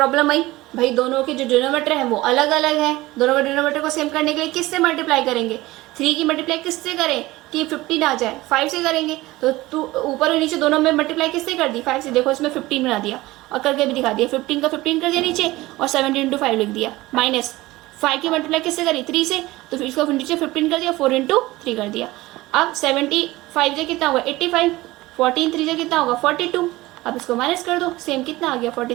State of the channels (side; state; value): left; quieter; 18.9 dB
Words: आई भाई, दोनों के जो डिनोमिनेटर है वो अलग अलग है, दोनों के डिनोमिनेटर को सेम करने के लिए किससे मल्टीप्लाई करेंगे, 3 की मल्टीप्लाई किससे करें कि 15 आ जाए, 5 से करेंगे। तो तू ऊपर और नीचे दोनों में मल्टीप्लाई किससे कर दी, 5 से। देखो इसमें 15 बना दिया और करके भी दिखा दिया, 15 का 15 कर दिया नीचे और 17 × 5 लिख दिया, माइनस 5 की मल्टीप्लाई किससे करी, 3 से, तो फिर इसको नीचे 15 कर दिया, 4 × 3 कर दिया। अब 75 से कितना होगा 85, 14 3 से कितना होगा 42। अब इसको माइनस कर दो, सेम कितना आ गया